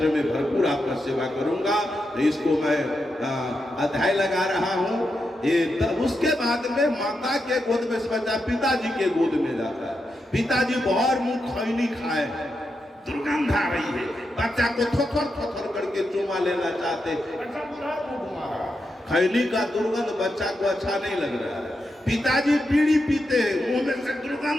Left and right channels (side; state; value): both; normal; correlation 0.86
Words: में भरपूर आपका सेवा करूंगा। तो इसको मैं अध्याय लगा रहा हूं। उसके बाद में माता के गोद में से बच्चा पिताजी के गोद में जाता है। पिताजी बहुत मुंह खैनी खाए, दुर्गंध आ रही है, बच्चा को थोथर थोथर करके चुमा लेना चाहते, खैनी का दुर्गंध बच्चा को अच्छा नहीं लग रहा है। पिताजी बीड़ी पीते हैं, मुंह में से